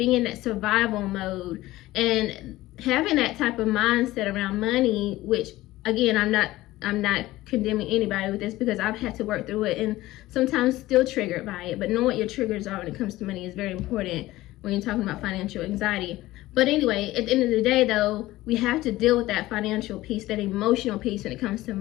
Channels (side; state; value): right; quieter; 17.1 dB